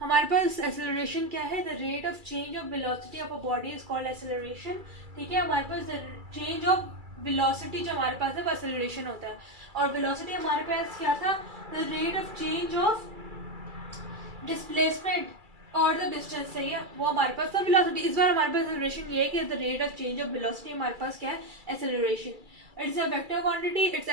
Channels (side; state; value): left; late; 2.3 ms